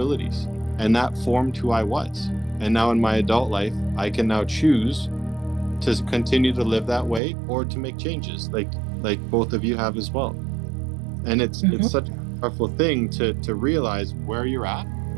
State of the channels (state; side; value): drops out; left; at 7.2 s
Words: and that formed who I was. And now in my adult life, I can now choose to continue to live that way or to make changes, like both of you have as well. And it's such a powerful thing to realize where you're at,